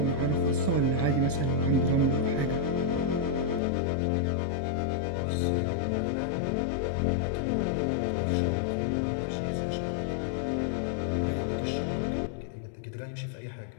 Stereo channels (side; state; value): right; drops out; at 3.6 s